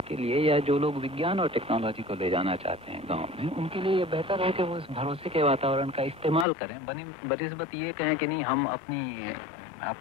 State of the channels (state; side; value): drops out; right; at 6.5 s